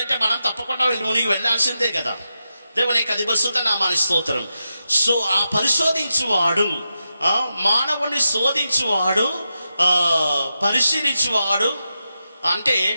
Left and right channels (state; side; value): inverted; both; correlation -0.88